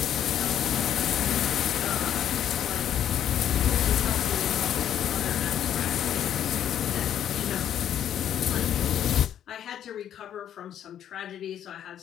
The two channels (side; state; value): right; quieter; 10.2 dB